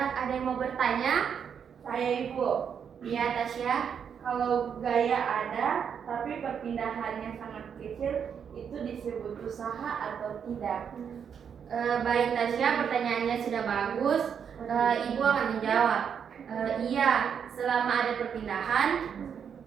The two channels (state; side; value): quieter; left; 7.5 dB